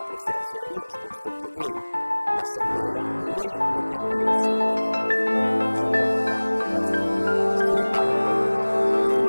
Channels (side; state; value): both; inverted; correlation -1.00